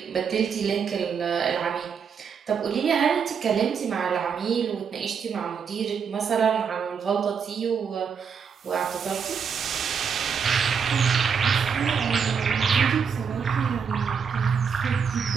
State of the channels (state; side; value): quieter; left; 6.5 dB